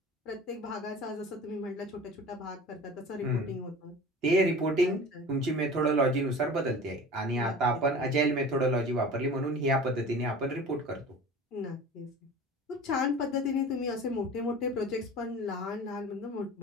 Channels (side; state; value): both; normal; correlation 0.38